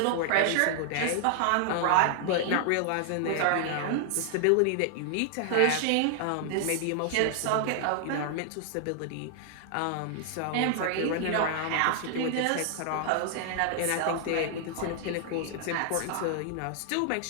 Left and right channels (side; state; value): both; different; correlation 0.00